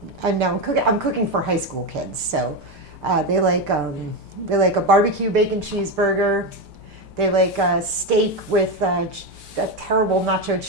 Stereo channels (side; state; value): left; late; 5.1 ms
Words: cooking for high school kids, so they like a barbecue bacon cheeseburger. They like a steak with a terrible nacho